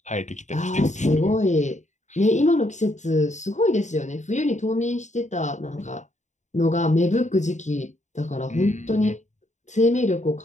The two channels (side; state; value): right; late; 0.34 ms